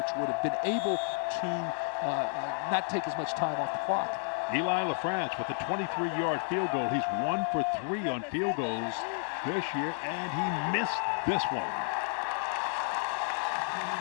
would have been able to not take as much time off the clock. Eli LaFrance with a 23-yard field goal. He's 1 for 3 on field goals this year, and he missed this one.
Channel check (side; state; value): right; silent; 57 dB below the other